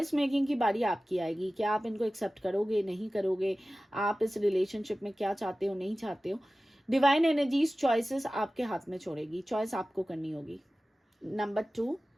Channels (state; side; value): normal; both; correlation 0.96